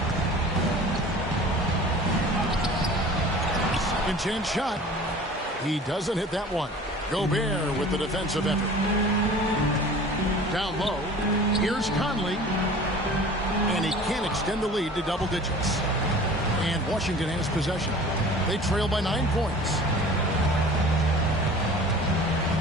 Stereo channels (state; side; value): normal; both; correlation 0.43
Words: Second chance shot. He doesn't hit that one. Gobert with the defensive effort. Down low. Here's Conley. And he can't extend the lead to double digits. And Washington has possession. They trail by 9 points.